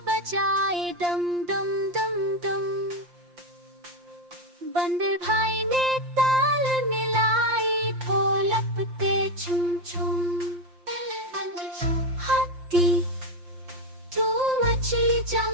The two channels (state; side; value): late; left; 5.7 ms